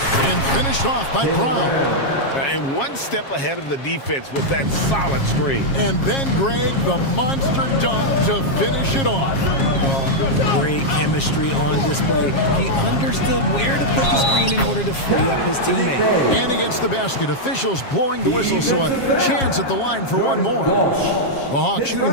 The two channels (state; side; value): late; right; 7.4 ms